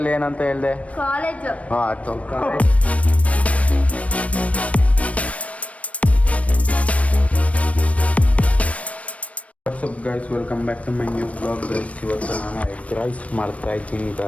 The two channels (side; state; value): right; late; 0.065 ms